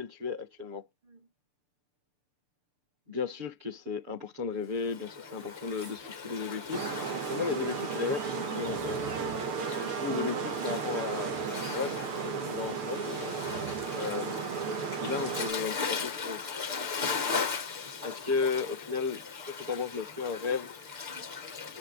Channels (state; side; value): late; left; 6.8 ms